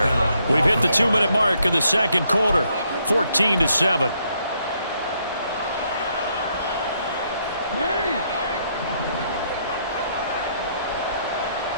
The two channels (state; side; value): inverted; both; correlation -0.73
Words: We've hit the 2-minute mark of the second quarter, 14-7.